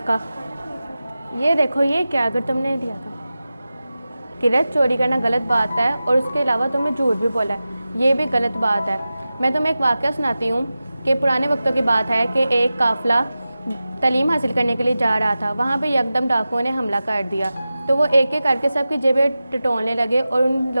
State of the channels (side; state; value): both; inverted; correlation -0.95